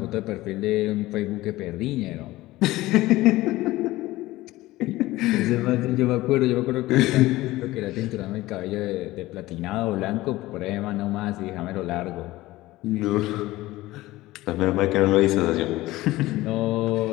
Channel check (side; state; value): right; quieter; 17.8 dB